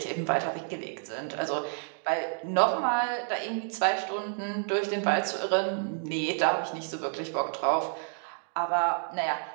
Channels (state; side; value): silent; left; 58 dB below the other